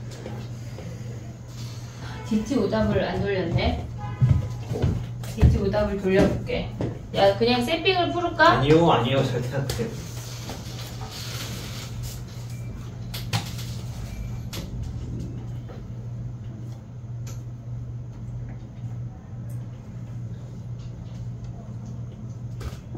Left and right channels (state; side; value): identical; both; correlation 1.00